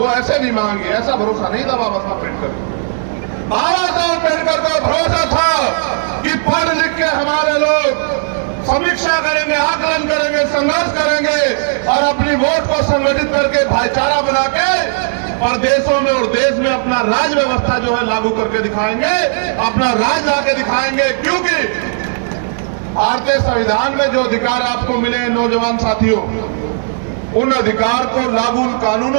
ऐसे नहीं मांगी, ऐसा भरोसा नहीं था बाबा साहब अम्बेडकर। बाबा साहब अम्बेडकर को भरोसा था कि पढ़ लिख के हमारे लोग समीक्षा करेंगे, आकलन करेंगे, संघर्ष करेंगे और अपनी वोट को संगठित करके भाईचारा बना के प्रदेशों में और देश में अपना राज व्यवस्था जो है लागू करके दिखाएंगे, अपना राज लाके दिखाएंगे। क्योंकि भारतीय संविधान में जो अधिकार आपको मिले हैं नौजवान साथियों, उन अधिकार को लागू, उन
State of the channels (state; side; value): silent; left; digital silence